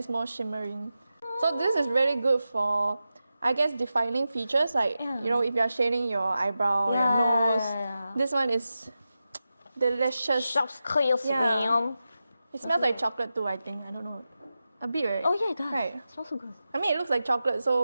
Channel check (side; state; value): both; inverted; correlation -0.92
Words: more shimmering. So this is really good for, I guess, defining features like you know, if you're shading your eyebrow, your nose. This one is delicious. Shops clear swim. It smells like chocolate too, I think. I don't know. A bit, right? Oh yeah, it does. Right. It smells so good. I mean, it looks like chocolate,